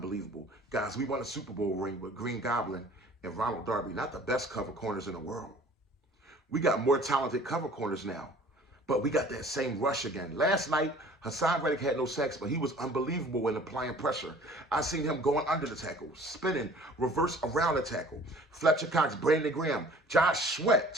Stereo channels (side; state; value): both; normal; correlation 0.50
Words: Guys, we won a Super Bowl ring with Green Goblin and Ronald Darby, not the best cover corners in the world. We got more talented cover corners now, but we got that same rush again. Last night, Hassan Reddick had no sacks, but he was unbelievable in applying pressure. I seen him going under the tackle, spinning, reverse around the tackle. Fletcher Cox, Brandon Graham, Josh Sweat,